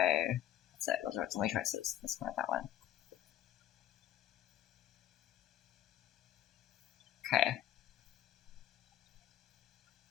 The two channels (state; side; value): quieter; right; 11.6 dB